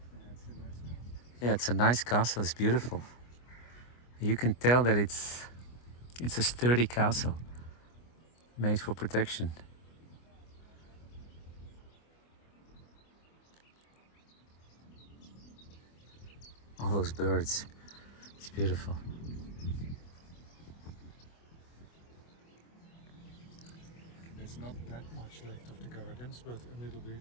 Yeah, it's a nice castle. It's beautiful. You can tell that it's a sturdy castle made for protection. All those birds. It's beautiful. There's not that much left of the gardens, but a little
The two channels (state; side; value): late; right; 25 ms